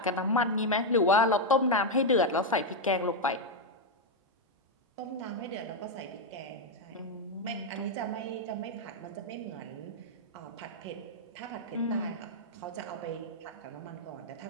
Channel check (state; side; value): normal; both; correlation 0.01